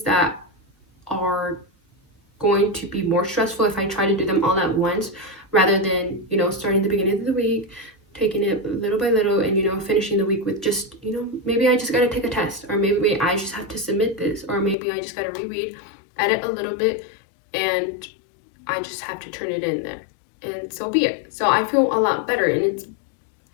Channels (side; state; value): right; drops out; at 14.8 s